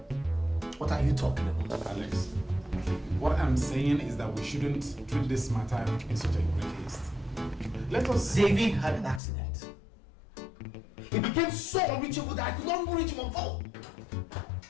What are you talking about? Alex, what I'm saying is that we shouldn't treat this matter in such a great haste. Let us... David had an accident. He became so unreachable that I could not even reach him on phone.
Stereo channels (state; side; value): drops out; right; at 9.2 s